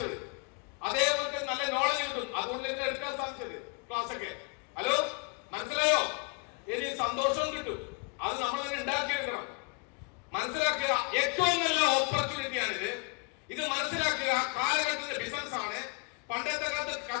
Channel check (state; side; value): quieter; right; 33.9 dB